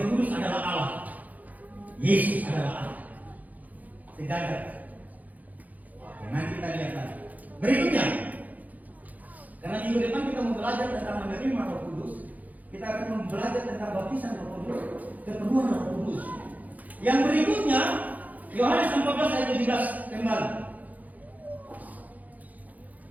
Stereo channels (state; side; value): late; left; 0.079 ms